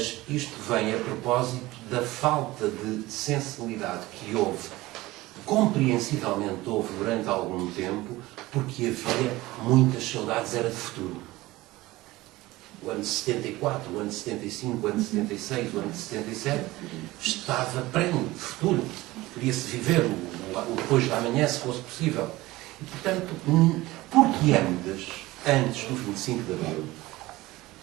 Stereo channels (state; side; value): quieter; left; 18.9 dB